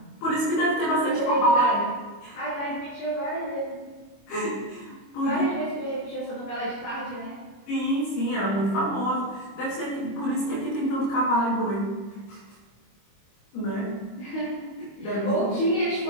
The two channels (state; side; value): late; right; 25 ms